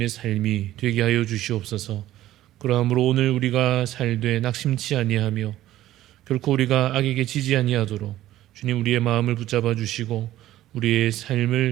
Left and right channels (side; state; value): left; quieter; 14.2 dB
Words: 삶이 되게 하여 주시옵소서. 그러므로 오늘 우리가 살되 낙심치 아니하며 결코 우리가 악에게 지지 아니하도록 주님 우리의 마음을 붙잡아 주시고 우리의